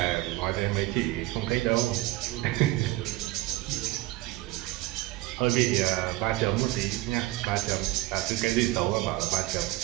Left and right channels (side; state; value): left; quieter; 18.4 dB